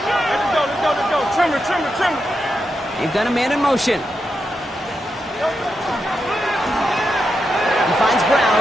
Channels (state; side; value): normal; both; correlation 0.86